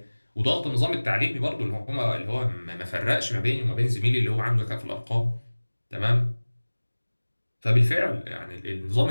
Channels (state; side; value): inverted; both; correlation -1.00